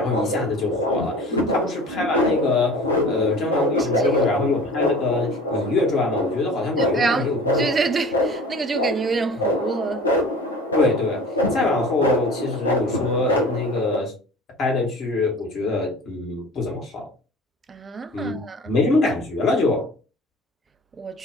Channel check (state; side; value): normal; both; correlation 0.41